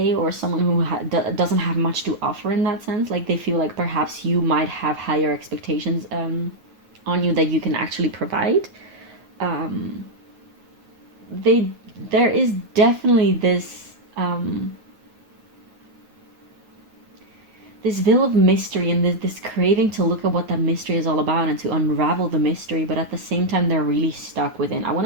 or someone who doesn't have much to offer in that sense. Like they feel like perhaps you might have higher expectations on you that you can actually provide. There is definitely this this veil of mystery and this craving to look at what that mystery is all about and to unravel the mystery, but at the same time they're really stuck within, I want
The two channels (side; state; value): left; late; 9.3 ms